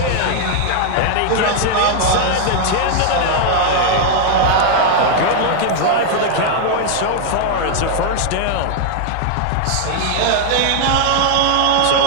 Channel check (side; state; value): both; different; correlation 0.00